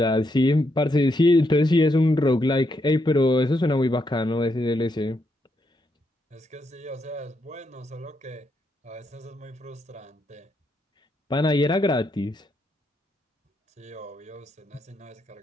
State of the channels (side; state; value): both; normal; correlation 0.79